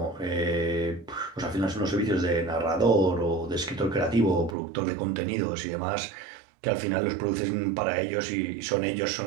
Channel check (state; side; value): drops out; left; at 4.5 s